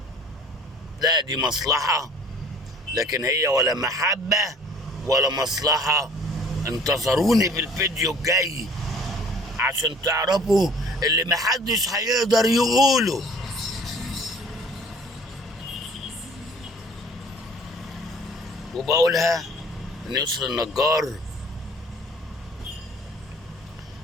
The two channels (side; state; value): both; normal; correlation 0.52